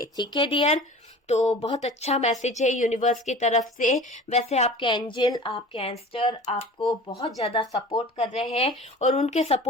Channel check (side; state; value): both; normal; correlation 0.40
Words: ठीक है डियर, तो बहुत अच्छा मैसेज है यूनिवर्स की तरफ से। वैसे आपके एंजल, आपके एंस्टर आपको बहुत ज्यादा सपोर्ट कर रहे हैं और उनके